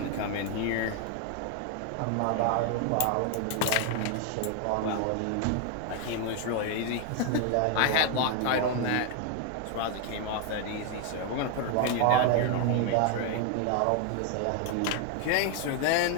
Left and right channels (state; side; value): different; both; correlation 0.01